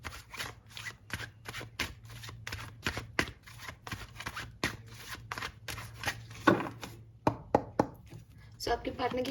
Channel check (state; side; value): identical; both; correlation 1.00